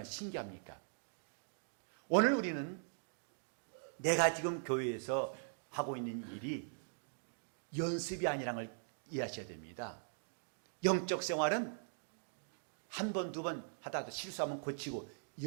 신기합니까? 오늘 우리는 내가 지금 교회에서 하고 있는 일이 연습이 아니라는 걸 이해하셔야 됩니다. 영적 생활은 한 번, 두 번 하다가 실수하면 고치고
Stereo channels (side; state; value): left; silent; digital silence